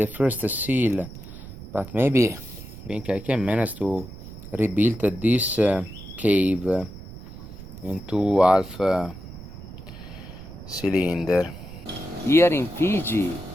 first seal, but maybe I think I can manage to rebuilt this cave into half cylinder. Here in Fiji,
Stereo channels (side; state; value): right; noise; rumble, 14 dB below the sound